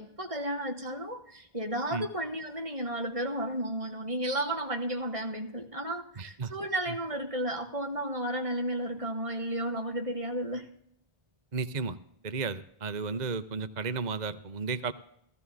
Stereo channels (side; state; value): left; late; 1.6 ms